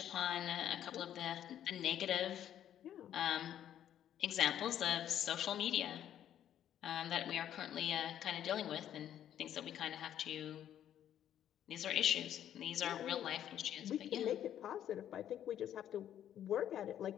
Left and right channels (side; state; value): right; quieter; 10.7 dB